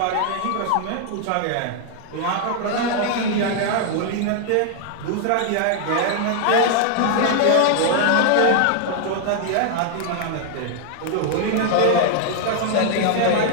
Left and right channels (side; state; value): both; different; correlation 0.00